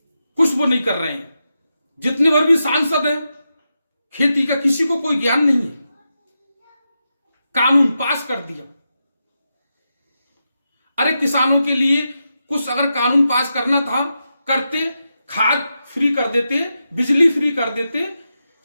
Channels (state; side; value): inverted; both; correlation -0.88